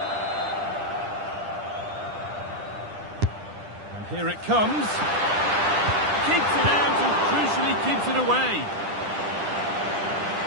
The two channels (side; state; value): left; late; 10 ms